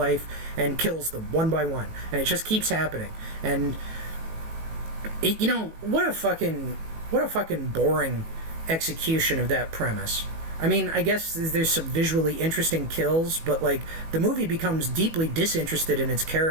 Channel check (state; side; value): late; left; 18 ms